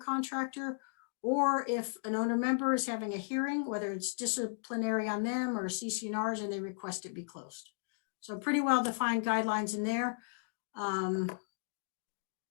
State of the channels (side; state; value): right; silent; digital silence